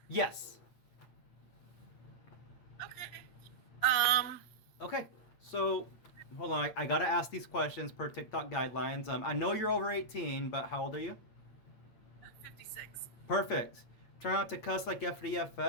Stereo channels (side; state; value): right; late; 8.7 ms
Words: Yes. Okay. Okay. So, hold on. I gotta ask these questions per TikTok guidelines. I know you're over 18, but how old are you? 56. Perfect. Try not to cuss like